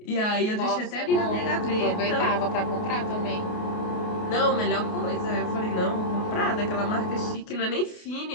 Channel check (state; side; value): late; right; 28 ms